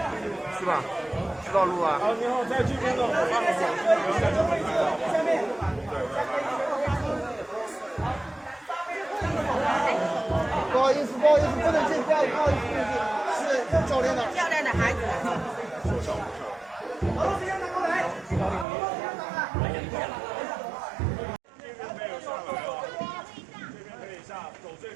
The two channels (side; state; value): left; drops out; at 18.7 s